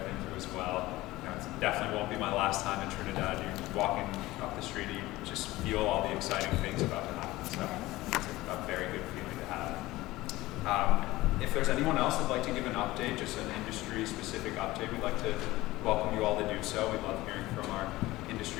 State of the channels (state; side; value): quieter; right; 18.3 dB